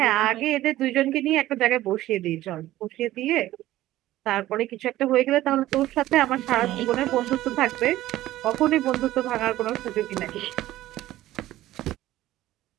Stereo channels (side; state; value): left; quieter; 15.2 dB